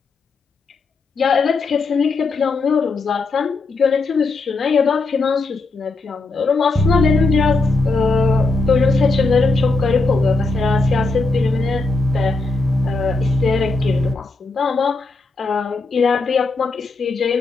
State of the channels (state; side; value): quieter; right; 3.6 dB